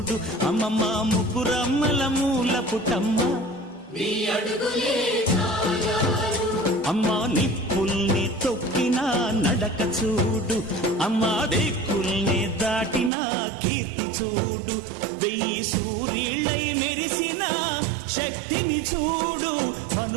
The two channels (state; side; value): drops out; left; at 13.1 s